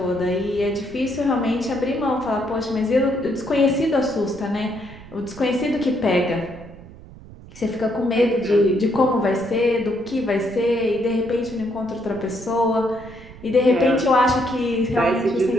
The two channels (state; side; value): noise; right; rumble, 18 dB below the sound